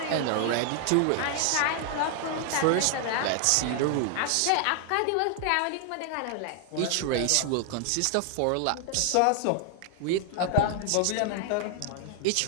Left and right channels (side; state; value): both; different; correlation 0.00